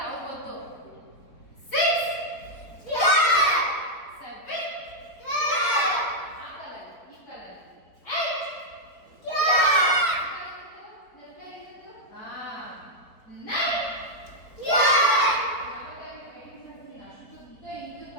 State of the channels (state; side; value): late; right; 4.1 ms